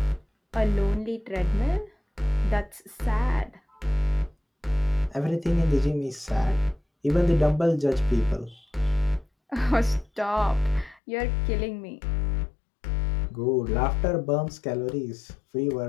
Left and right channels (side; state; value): right; drops out; at 11.0 s